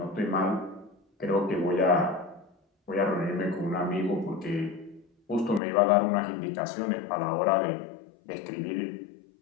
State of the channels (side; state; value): right; drops out; at 5.6 s